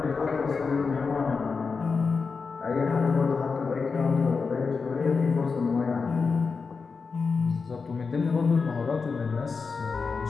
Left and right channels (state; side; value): quieter; right; 4.9 dB